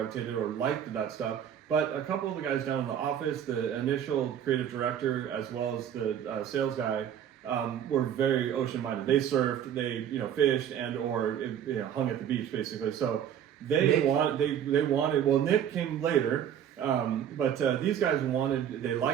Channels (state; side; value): quieter; left; 9.4 dB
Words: or liked that stuff. But a couple of the guys down in the office, the initial creative director as well as the sales guy, were very ocean minded. They surfed, they fished and or hung at the beach basically. So they wanted. Well, Nick came later. But these guys they